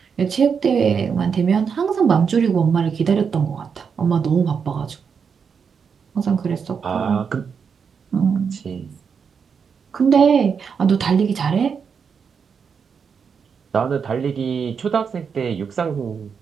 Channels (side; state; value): left; quieter; 6.3 dB